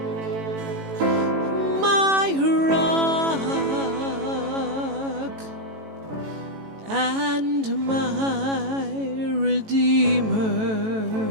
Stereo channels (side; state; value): left; late; 18 ms